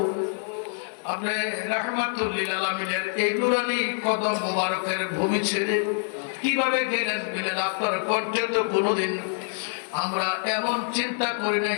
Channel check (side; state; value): right; silent; 61 dB below the other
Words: আপনি রাহমাতুল লিল আলামিনের এই নুরানি কদম মোবারকের ভূমি ছেড়ে কিভাবে গেলেন? বিলাল, আপনার কণ্ঠে তো কোনোদিন আমরা এমন চিন্তা করি